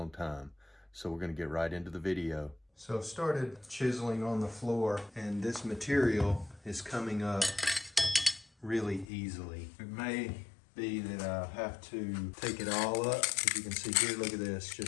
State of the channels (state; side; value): drops out; right; at 9.1 s